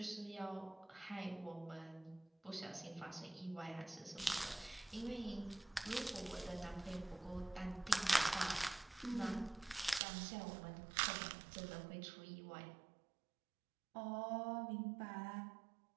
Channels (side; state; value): left; drops out; at 10.0 s